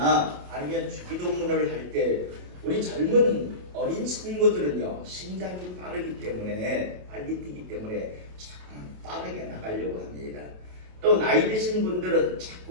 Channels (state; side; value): late; left; 28 ms